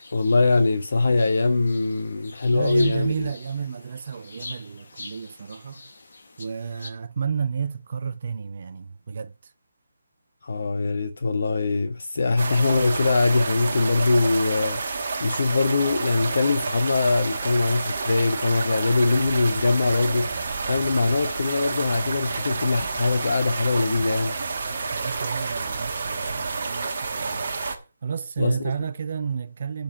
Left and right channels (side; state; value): both; inverted; correlation -0.90